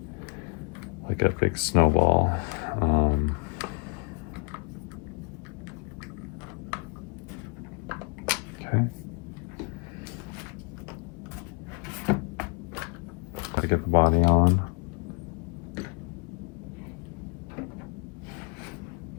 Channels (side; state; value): right; quieter; 32.4 dB